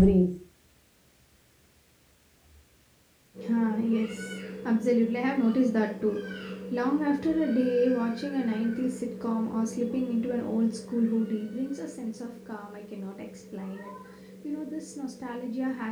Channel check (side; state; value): both; identical; correlation 1.00